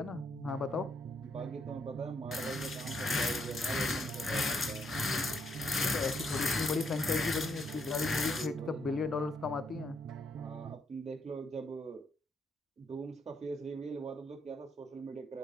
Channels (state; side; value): normal; both; correlation 0.74